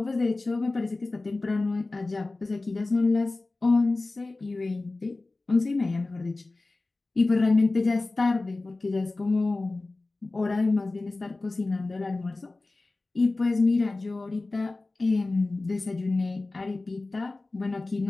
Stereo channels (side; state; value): right; quieter; 3.2 dB